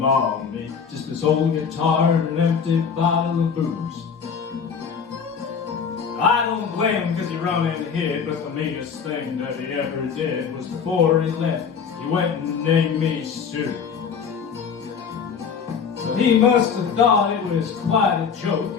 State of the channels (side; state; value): right; quieter; 6.4 dB